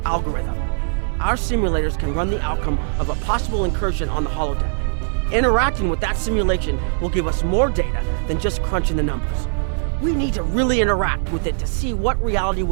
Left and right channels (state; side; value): silent; left; digital silence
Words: algorithm. Our simulators can run the outcome of a possible incursion on the holodeck. Interacting with that simulation will give us more data than just crunching the numbers. We need to really interact with it to see what reality